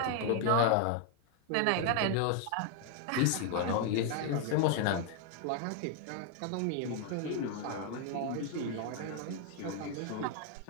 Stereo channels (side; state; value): both; different; correlation 0.00